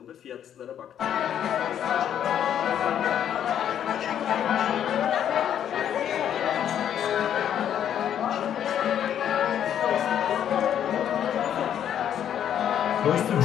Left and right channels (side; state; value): right; quieter; 9.7 dB